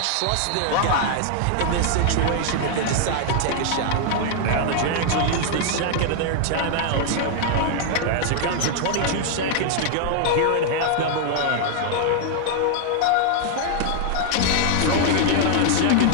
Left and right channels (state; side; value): different; both; correlation 0.00